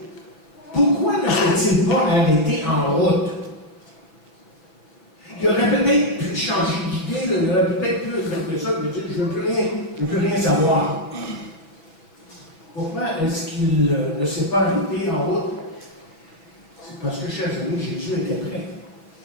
pourquoi ne s'est-il pas arrêté en route? Il aurait peut-être pu changer d'idée, il aurait peut-être pu faire ça, mais dire je ne veux plus rien savoir. Pourquoi est-ce qu'il ne s'est pas arrêté en route? C'est parce que, chers amis, Jésus était prêt.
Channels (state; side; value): late; right; 6.2 ms